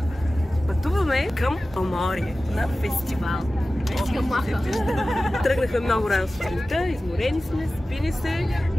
Пътуваме към Поморие на фестивал. Тръгнахме много рано сутринта, изморени сме, спини се,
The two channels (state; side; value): normal; both; correlation 0.96